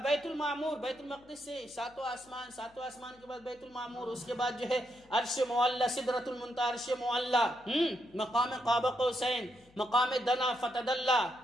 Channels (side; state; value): left; noise; hum, 29 dB below the sound